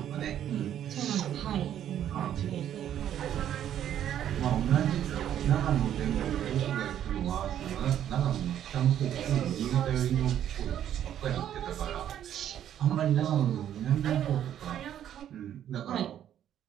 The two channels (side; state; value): left; quieter; 10.6 dB